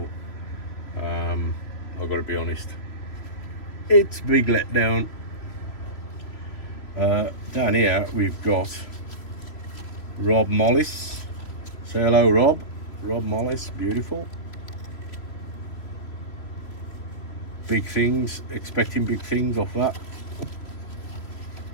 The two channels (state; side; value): late; right; 3.1 ms